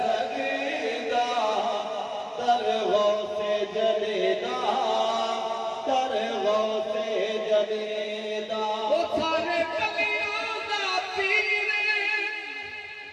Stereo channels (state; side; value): identical; both; correlation 1.00